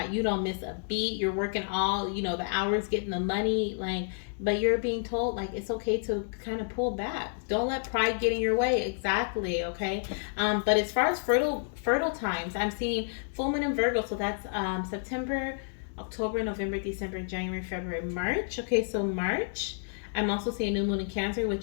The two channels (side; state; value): right; silent; digital silence